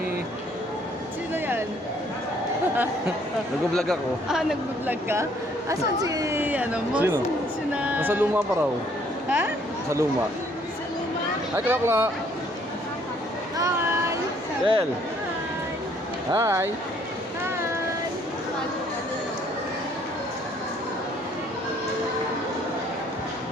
Sino yan? Nag-vlog ako. Nag-vlog ka? Asan si, mo? Sino? Sina... Nasa luma pa raw. Ha? Sa luma. Sa luma? Hi, Klakla! Hi! Del! Hi! Hi!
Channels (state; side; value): normal; both; correlation 0.63